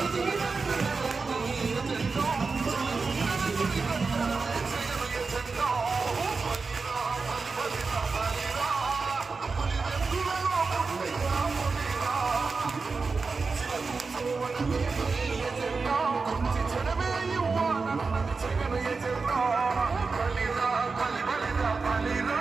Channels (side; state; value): left; quieter; 4.4 dB